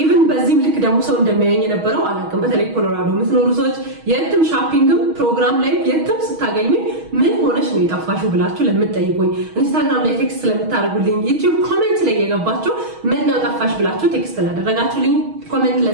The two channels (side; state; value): left; late; 6.3 ms